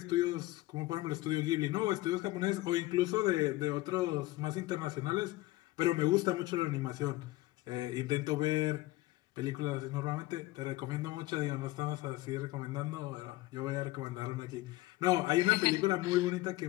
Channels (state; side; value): quieter; right; 18.6 dB